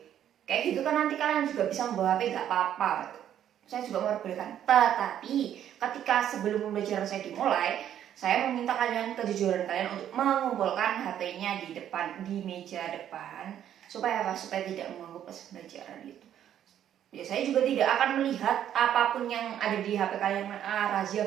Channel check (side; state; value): left; quieter; 10.4 dB